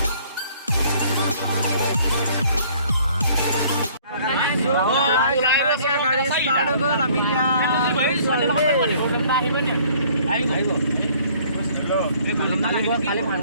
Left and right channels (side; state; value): both; inverted; correlation -0.57